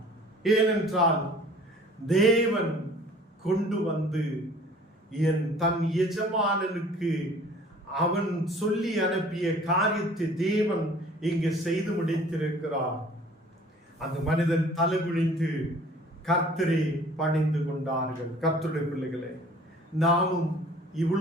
ஏனென்றால் தேவன் கொண்டு வந்து தன் எஜமானனுக்கு அவன் சொல்லி அனுப்பிய காரியத்தை தேவன் இங்கு செய்து முடித்திருக்கிறார். அந்த மனிதன் தலை குனிந்து கர்த்தரை பணிந்து கொண்டார்கள். கர்த்தருடைய பிள்ளைகளே, நாமும்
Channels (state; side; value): normal; both; correlation 0.50